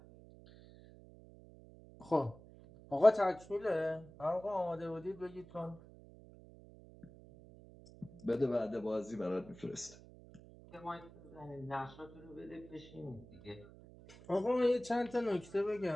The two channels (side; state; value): right; noise; hum, 20 dB below the sound